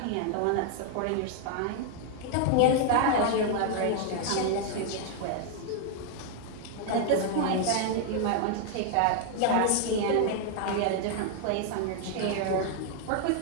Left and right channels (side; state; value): both; different; correlation 0.00